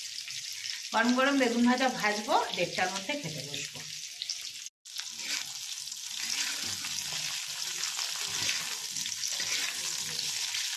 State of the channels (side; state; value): both; identical; correlation 1.00